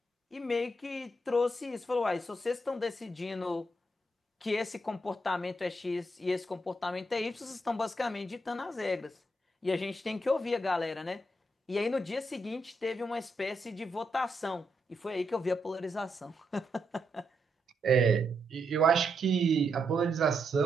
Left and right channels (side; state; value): both; normal; correlation 0.80